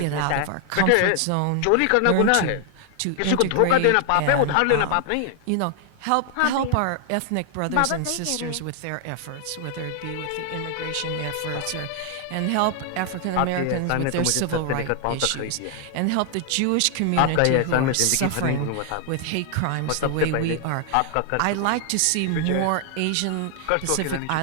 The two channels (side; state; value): both; different; correlation 0.00